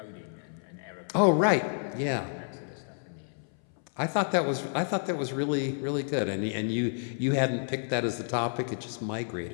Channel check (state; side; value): silent; right; 58 dB below the other